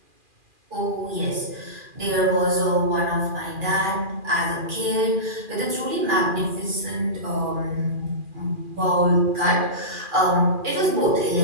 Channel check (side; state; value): left; late; 2.4 ms